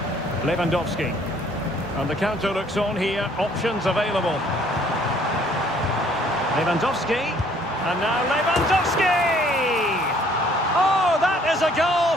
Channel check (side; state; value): both; normal; correlation 0.60